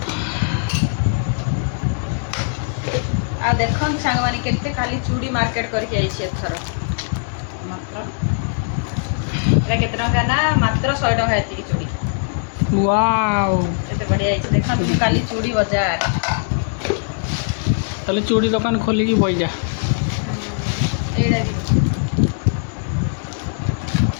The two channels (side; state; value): right; silent; digital silence